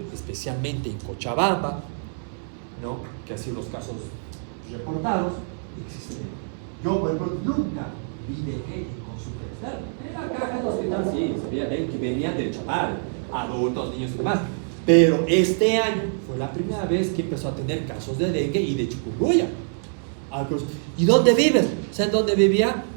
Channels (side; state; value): left; silent; 62 dB below the other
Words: especialmente en Cochabamba, ¿no?, que así los casos reportados existen. Yo, por ejemplo, nunca vi dengue en consulta. En la caja del hospital sí, sabía que venían del Chapar, adultos, niños y demás. Pero este año fue la primera vez que empezó a tener casos de dengue y de chikungunya. ¿Y dónde vives? O sea, ¿dónde vivía?